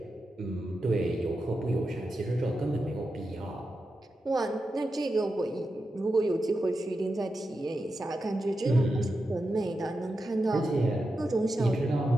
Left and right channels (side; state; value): both; normal; correlation 0.89